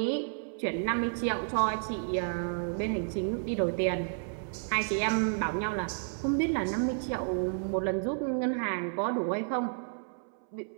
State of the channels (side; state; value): left; silent; 57 dB below the other